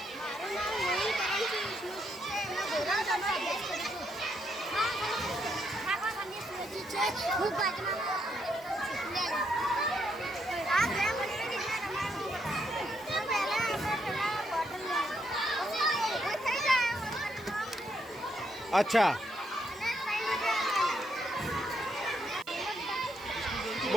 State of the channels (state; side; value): noise; right; hiss, 24 dB below the sound